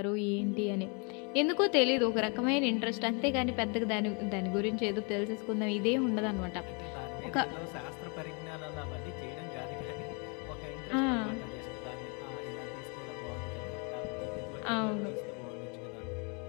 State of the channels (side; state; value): right; quieter; 34.5 dB